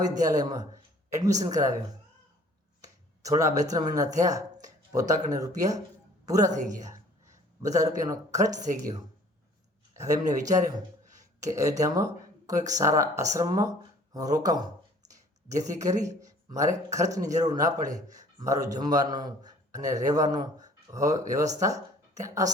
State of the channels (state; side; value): normal; both; correlation 0.53